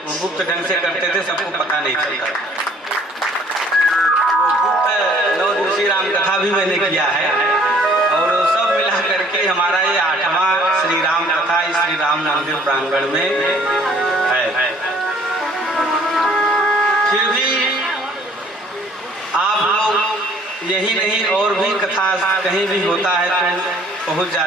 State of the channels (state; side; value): normal; both; correlation 0.58